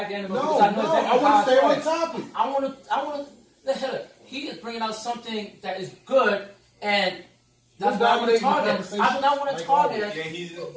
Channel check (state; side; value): identical; both; correlation 1.00